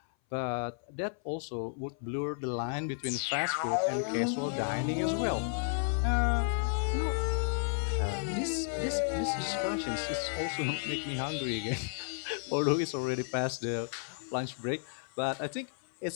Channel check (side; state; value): right; silent; 56 dB below the other